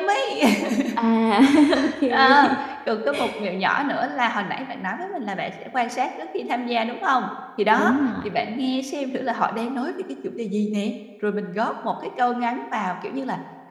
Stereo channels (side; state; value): both; identical; correlation 1.00